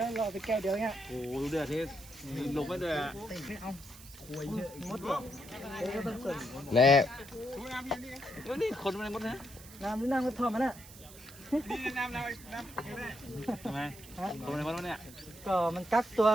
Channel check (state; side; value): noise; right; hiss, 18 dB below the sound